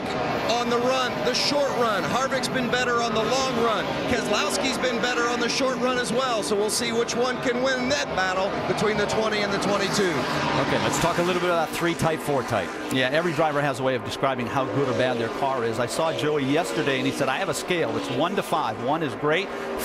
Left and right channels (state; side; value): identical; both; correlation 1.00